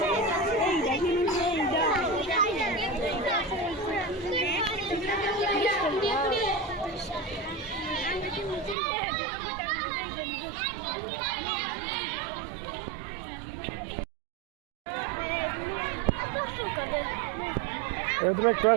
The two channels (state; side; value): drops out; left; at 8.8 s